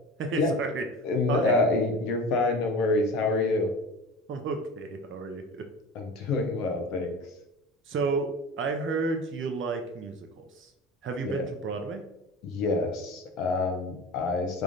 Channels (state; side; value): normal; both; correlation 0.34